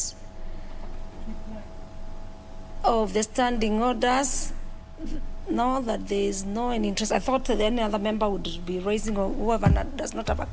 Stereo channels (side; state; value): both; identical; correlation 1.00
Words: of the standing orders. Now that there is no any interest, I thought that any other member would be raising, or whoever does not have a